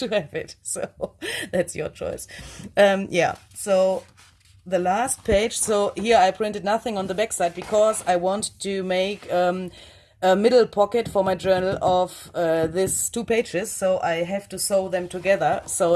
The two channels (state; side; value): identical; both; correlation 1.00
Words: have it. So that's your choice. Yeah, so the last page, so here I printed nothing on the back side because I want to make a middle pocket for my journal of these 2 pages, so I have to sew them together, so